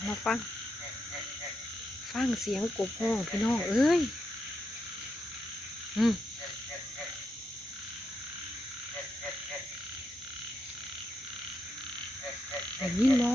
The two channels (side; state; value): both; normal; correlation 0.83